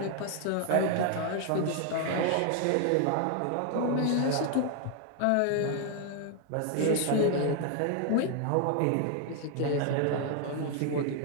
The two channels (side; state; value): both; different; correlation 0.00